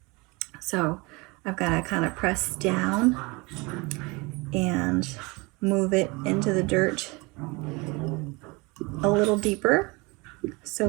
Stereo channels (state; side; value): quieter; left; 26.0 dB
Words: So I've got to kind of press down and move it into the dirt a little deeper